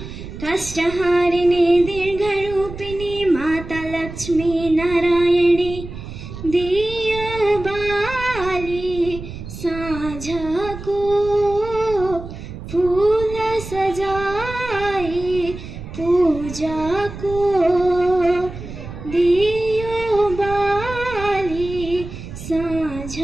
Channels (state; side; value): noise; right; rumble, 11 dB below the sound